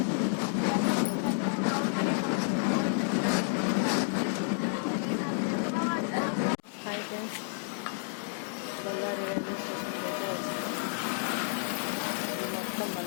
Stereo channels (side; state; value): right; silent; digital silence